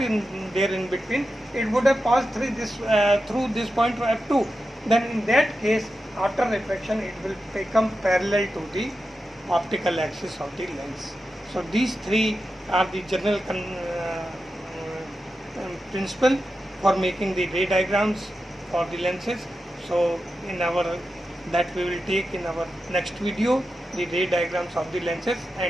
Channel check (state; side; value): normal; both; correlation 0.90